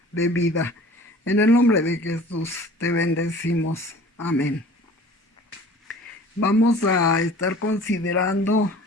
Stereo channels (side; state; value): both; normal; correlation 0.46